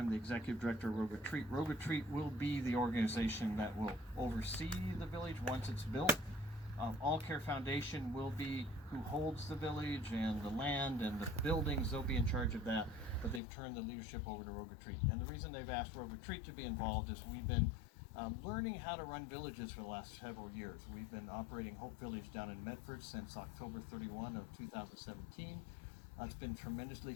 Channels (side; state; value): right; drops out; at 13.4 s